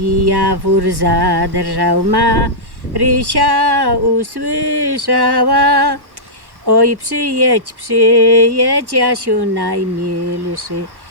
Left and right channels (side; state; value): left; late; 1.1 ms